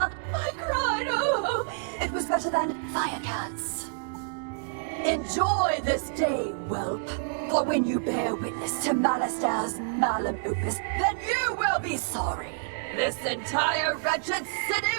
I cried. Oh, it was better than Firecats. Enjoy this day, whelp. For when you bear witness to Malister's malum opus, then you will be sorry. This entire wretched city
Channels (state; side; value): silent; left; digital silence